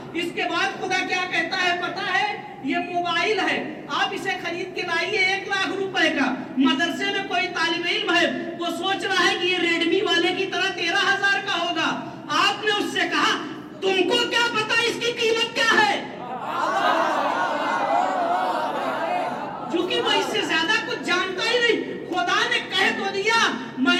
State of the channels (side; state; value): both; identical; correlation 1.00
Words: اس کے بعد خدا کیا کہتا ہے پتہ ہے؟ یہ موبائل ہے، آپ اسے خرید کے لائیے 1 لاکھ روپے کا، مدرسے میں کوئی طالب علم ہے وہ سوچ رہا ہے کہ یہ ریڈمی والے کی طرح 13,000 کا ہوگا، آپ نے اس سے کہا تم کو کیا پتا اس کی قیمت کیا ہے؟ چونکہ وہ اس سے زیادہ کچھ جانتا ہی نہیں۔ خدا نے کہہ تو دیا